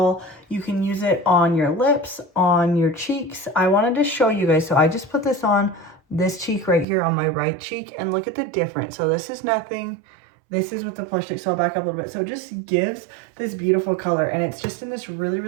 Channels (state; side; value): drops out; left; at 6.9 s